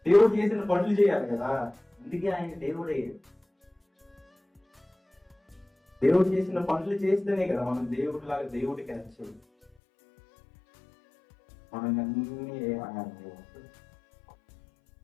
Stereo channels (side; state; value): right; drops out; at 9.7 s